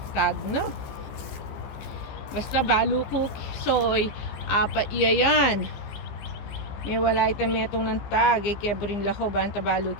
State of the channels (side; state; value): right; late; 14 ms